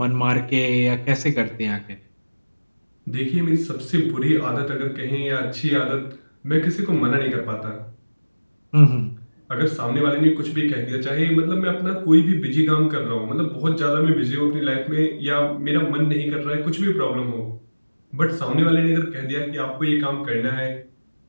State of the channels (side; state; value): both; inverted; correlation -1.00